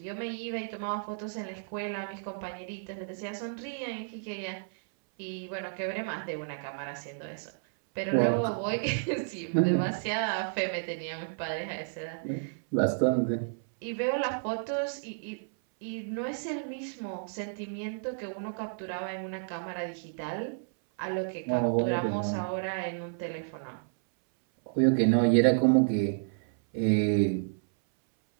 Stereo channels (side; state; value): left; silent; 57 dB below the other